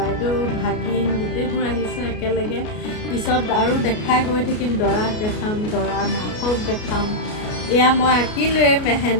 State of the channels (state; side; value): late; right; 33 ms